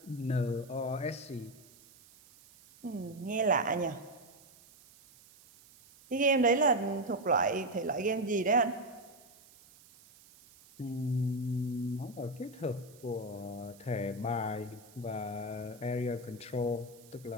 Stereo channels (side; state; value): right; noise; hiss, 24 dB below the sound